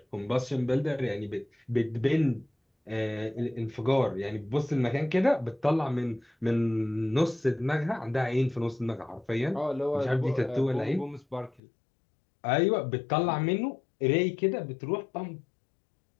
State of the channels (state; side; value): drops out; right; at 11.6 s